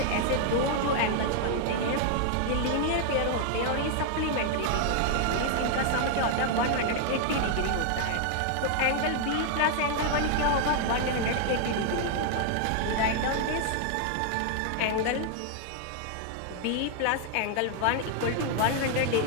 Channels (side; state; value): both; different; correlation 0.00